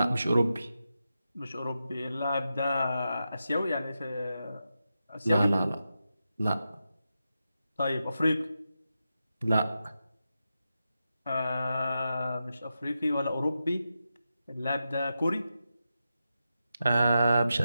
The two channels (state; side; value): inverted; both; correlation -0.89